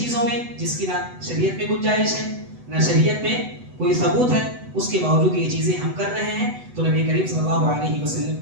میں جس کی نہ شریعت میں گنجائش ہے نہ شریعت میں کوئی ثبوت ہے، اس کے باوجود یہ چیزیں ہم کر رہے ہیں تو نبی کریم صلی اللہ علیہ وسلم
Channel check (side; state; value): left; late; 8.0 ms